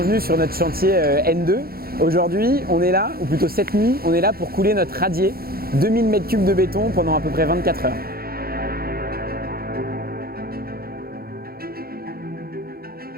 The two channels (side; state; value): left; late; 0.44 ms